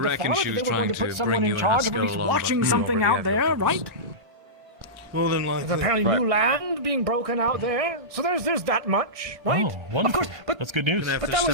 reckon father, she that was they were going to trying put to someone bring in you and charge of at Haskell least along, but watching we something already out have there, your right? More than There's likely. apparently new land being broken out there, so there's that much, right? Oh, wonderful. Of course, but That's good news. but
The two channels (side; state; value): left; late; 1.4 ms